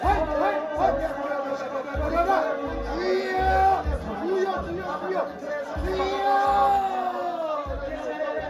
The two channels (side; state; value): both; identical; correlation 1.00